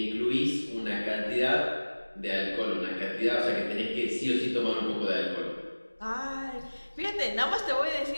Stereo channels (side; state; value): both; inverted; correlation -1.00